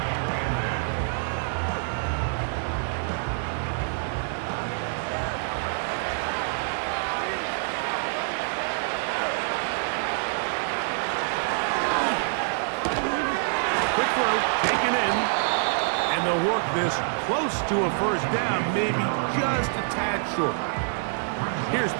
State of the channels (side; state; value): left; silent; 61 dB below the other